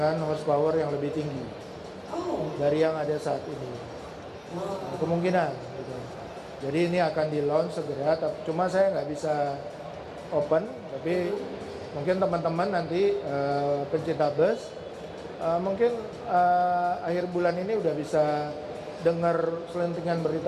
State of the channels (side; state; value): both; identical; correlation 1.00